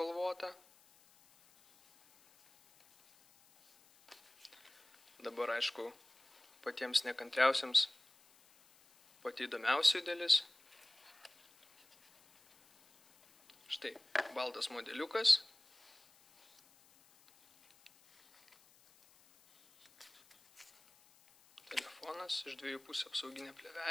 Dabar, aišku, patiems nekantriausiams pati įdomiausia dalis. Štai, baltas modeliukas. Telefonas, iš dviejų pusių apsauginė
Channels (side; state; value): left; noise; hiss, 29 dB below the sound